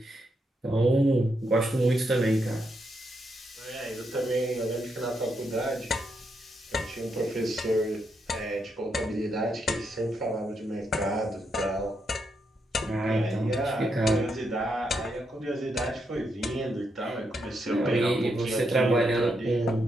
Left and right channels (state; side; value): normal; both; correlation 0.80